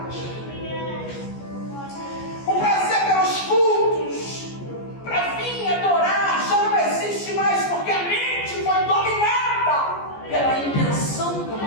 O prazer pelos cultos para vir adorar já não existe mais, porque a mente foi dominada pela intenção do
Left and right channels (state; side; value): late; right; 14 ms